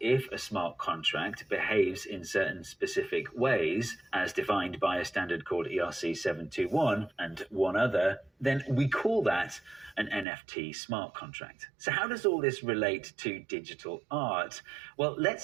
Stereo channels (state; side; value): drops out; left; at 10.2 s